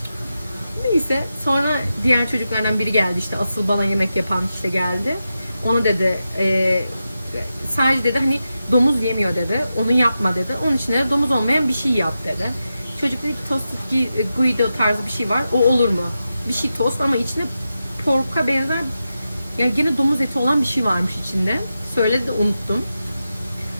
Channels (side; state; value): both; inverted; correlation -0.90